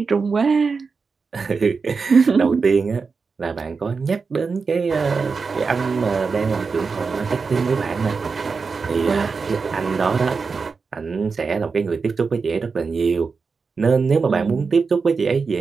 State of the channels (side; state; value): left; quieter; 4.9 dB